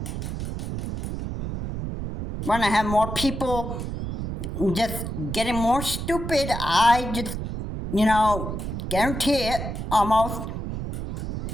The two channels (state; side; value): noise; right; rumble, 5 dB below the sound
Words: when I have more people just getting more stupid, I just, guarantee it almost.